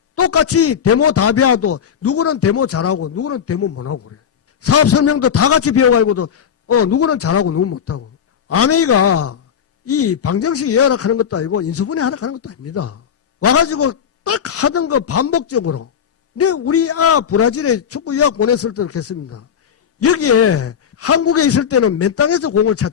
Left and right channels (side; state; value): right; quieter; 8.0 dB